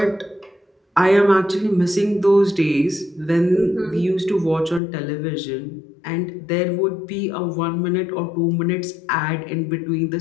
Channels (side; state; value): right; drops out; at 4.8 s